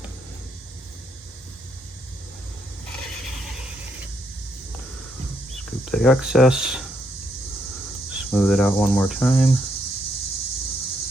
Scoop the excess. Smooth it out one more time. Now,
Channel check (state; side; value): normal; both; correlation 0.75